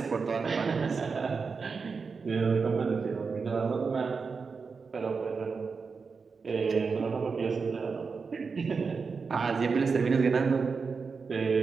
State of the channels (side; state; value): left; quieter; 5.0 dB